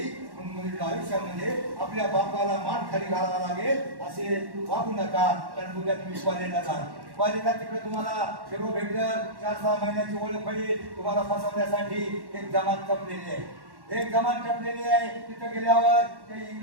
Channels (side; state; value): left; late; 1.1 ms